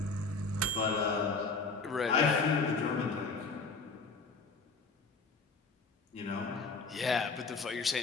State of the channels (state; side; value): quieter; right; 4.2 dB